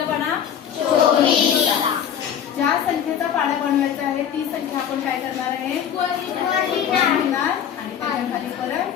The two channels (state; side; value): quieter; right; 8.9 dB